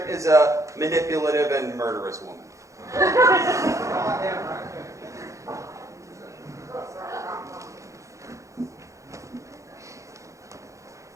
is a manipulative and murderous woman. I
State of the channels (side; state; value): left; late; 0.15 ms